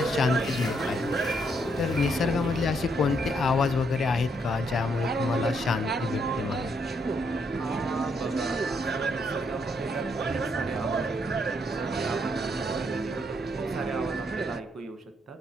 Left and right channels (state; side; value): normal; both; correlation 0.74